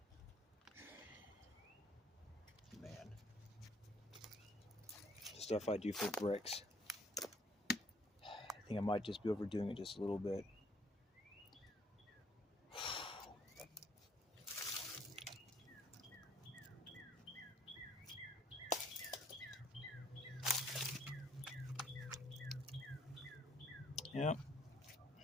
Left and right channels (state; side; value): normal; both; correlation 0.64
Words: Man. Stuff I do for bricks. I think I might just be overdoing it just a little bit. Yep.